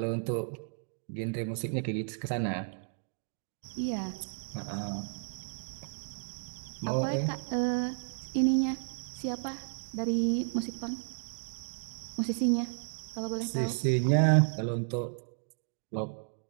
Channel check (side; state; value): left; silent; digital silence